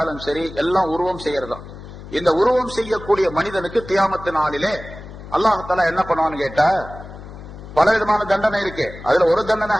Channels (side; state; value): left; noise; hum, 15 dB below the sound